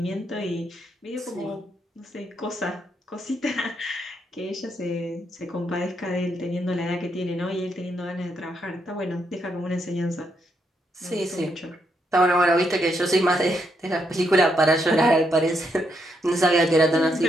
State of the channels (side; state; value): both; normal; correlation 0.78